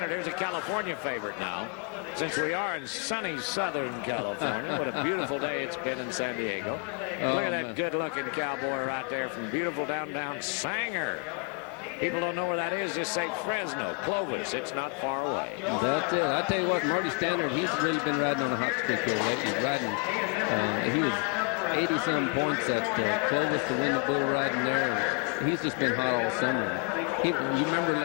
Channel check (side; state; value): right; quieter; 36.8 dB